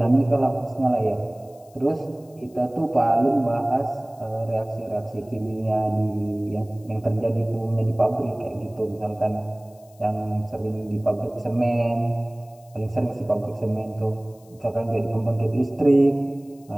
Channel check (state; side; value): noise; left; hiss, 29 dB below the sound